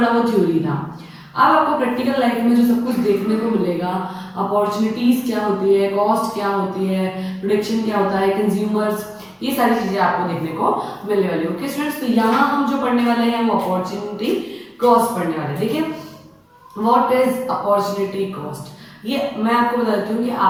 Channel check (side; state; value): both; identical; correlation 1.00